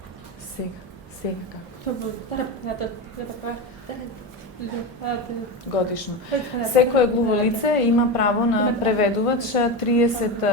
Сега како? Годишно. Секое глуво лице има право на преведувач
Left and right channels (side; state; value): both; normal; correlation 0.19